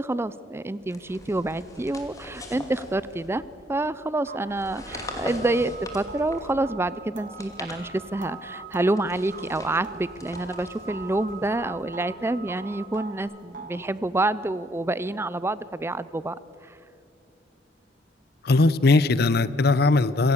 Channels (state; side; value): normal; both; correlation 0.68